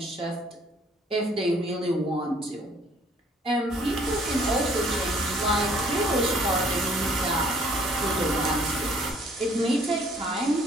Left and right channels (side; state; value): both; normal; correlation 0.60